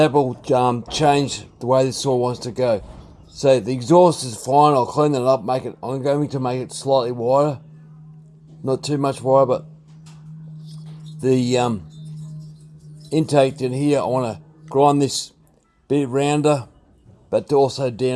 will change the way this saw wants to go. So the exhaust is fine. I'll clean it up. I'm going to make it slightly wider, not too much wider. But the intake in here, I want to grind this bit rounder, but also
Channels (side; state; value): both; identical; correlation 1.00